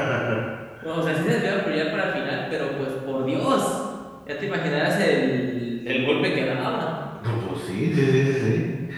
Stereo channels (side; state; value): both; identical; correlation 1.00